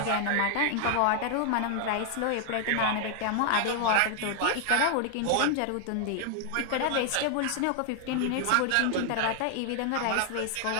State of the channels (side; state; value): both; different; correlation 0.00